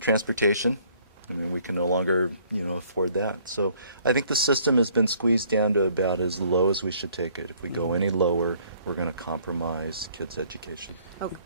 I mean, we can no longer, afford that. So I think the system has been squeezed down to about as low as we should take it. If we go any lower, we're going to compromise kids' education. Oh,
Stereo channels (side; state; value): both; inverted; correlation -0.61